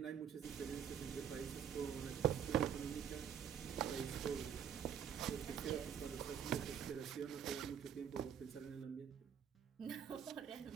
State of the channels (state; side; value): quieter; left; 8.4 dB